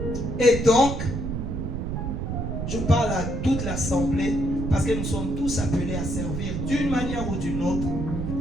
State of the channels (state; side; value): noise; right; rumble, 3 dB below the sound